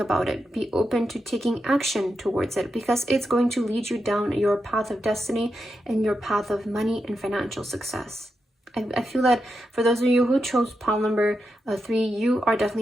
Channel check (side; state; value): both; normal; correlation 0.87